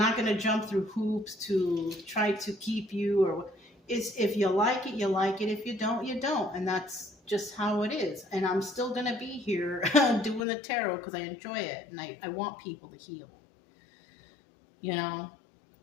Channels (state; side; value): drops out; right; at 10.4 s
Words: going to jump through hoops to try to keep you, or it's, if you like it, you like it. If you don't, you don't. And that's just how it is. And I'm still going to be here doing the tarot because I enjoy it. And I want people to heal,